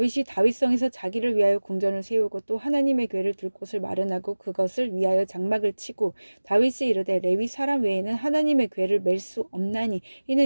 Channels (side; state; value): both; inverted; correlation -1.00